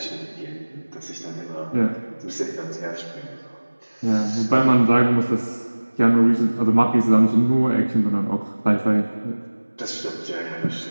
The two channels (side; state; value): both; inverted; correlation -1.00